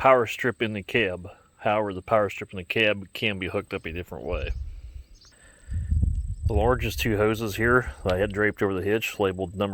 strip in the cab. However, the power strip in the cab can be hooked up a different way. The largest 2 hoses here that I had draped over the hitch, labeled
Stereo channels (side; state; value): both; identical; correlation 1.00